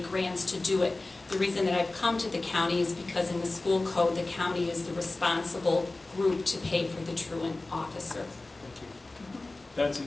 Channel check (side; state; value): right; quieter; 3.1 dB